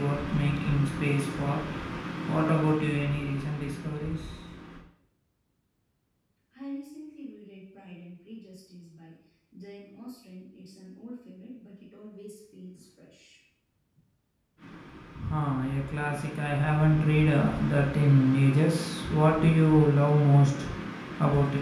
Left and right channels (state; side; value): identical; both; correlation 1.00